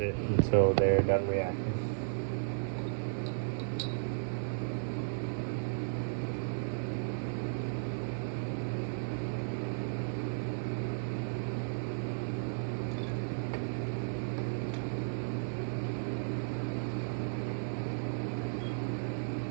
until they're done reacting.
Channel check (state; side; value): silent; left; 55 dB below the other